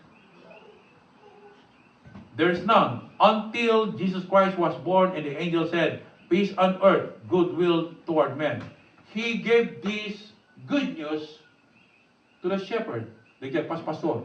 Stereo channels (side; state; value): both; identical; correlation 1.00